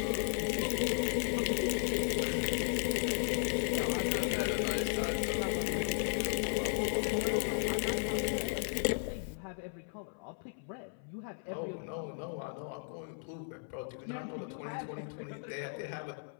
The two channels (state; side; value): silent; right; 54 dB below the other